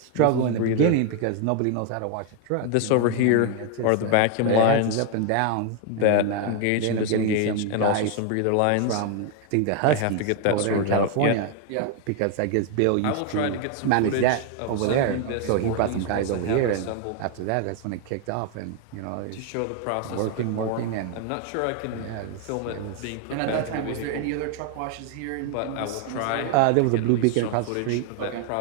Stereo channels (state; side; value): different; both; correlation 0.00